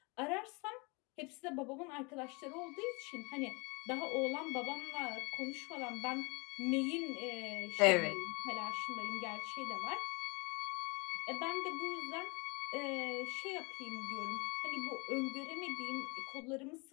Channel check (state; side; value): quieter; right; 28.9 dB